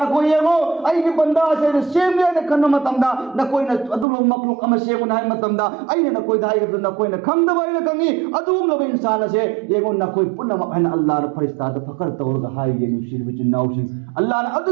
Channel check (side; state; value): left; drops out; at 4.0 s